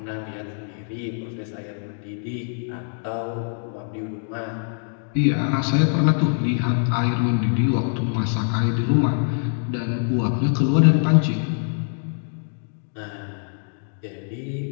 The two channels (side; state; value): right; silent; digital silence